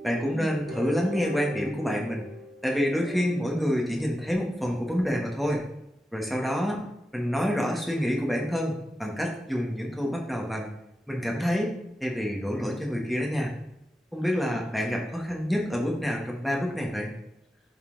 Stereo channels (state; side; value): normal; both; correlation 0.90